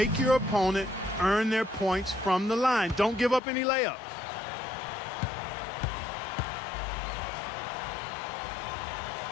your opponent earn their points from the line. Don't give up any layups.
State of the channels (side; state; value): right; drops out; at 3.4 s